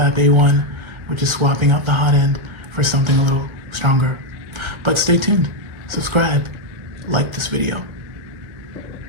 A1, which is swapping out the hot end for something a little stronger. But stay tuned, subscribe, like this video.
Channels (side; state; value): left; late; 1.4 ms